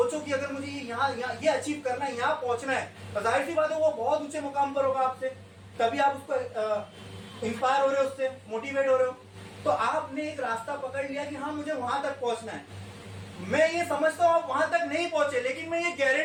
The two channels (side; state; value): both; identical; correlation 1.00